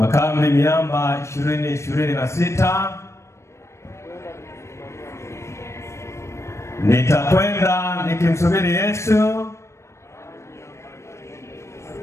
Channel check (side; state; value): right; late; 0.13 ms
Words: Miamba 2026. Nitakwenda nikimsubiri Yesu.